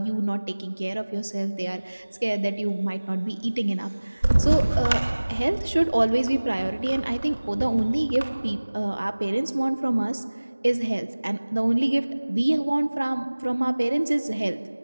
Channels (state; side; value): inverted; both; correlation -1.00